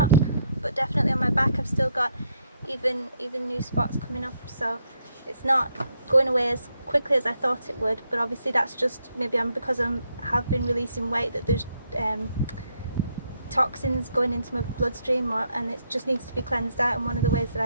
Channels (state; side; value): inverted; both; correlation -0.75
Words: but definitely on my back I've still got even new spots coming up. So it's not going away as quickly as I thought it would. But obviously that's just maybe because I have been releasing weight, that there's toxins going into my bloodstream, and it just needs to be cleansed out. And one of the ways